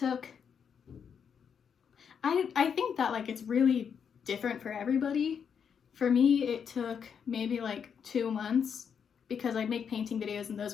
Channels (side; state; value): right; quieter; 7.2 dB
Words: I think that like it's really different for everybody. For me, it took maybe like 2 months, because I'd make painting videos and those